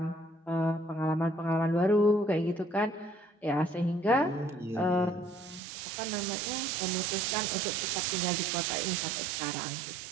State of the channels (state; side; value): drops out; left; at 5.6 s